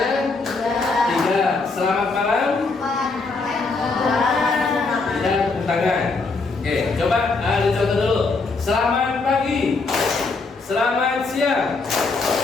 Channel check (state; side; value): quieter; right; 3.9 dB